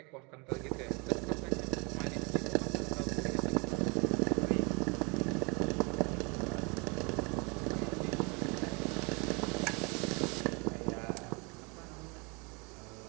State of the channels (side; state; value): left; quieter; 30.4 dB